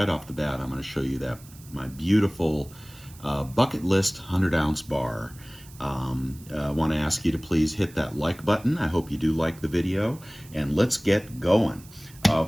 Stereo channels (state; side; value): noise; right; hiss, 22 dB below the sound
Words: off the bat, I'm going to show you that my beautiful bucket list 100-ounce bar. I want to ask you to please hit that like button. I hope you do like the video, and let's get going.